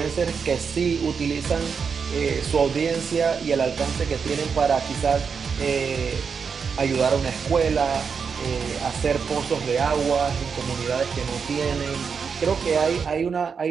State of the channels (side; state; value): left; quieter; 6.0 dB